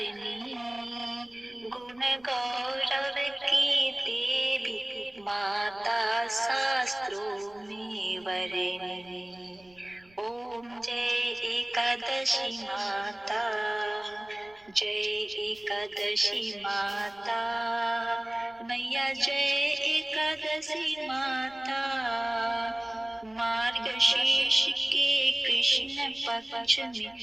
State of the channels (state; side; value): noise; right; rumble, 30 dB below the sound